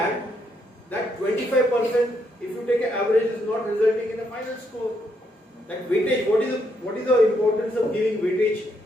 25%, if you take an average, is not resulting in a final score. Like weightage, what is the importance of giving weightage?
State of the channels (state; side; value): normal; both; correlation 0.76